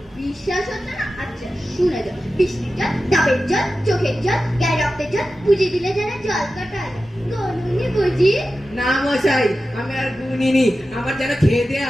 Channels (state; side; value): normal; both; correlation 0.93